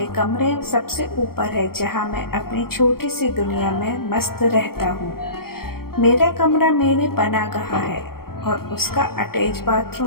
कमरे सबसे ऊपर है जहाँ मैं अपनी छोटी सी दुनिया में मस्त रहता हूँ। मेरा कमरा मेरी पनाहगाह है और उसका अटैच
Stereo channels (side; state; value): right; late; 0.94 ms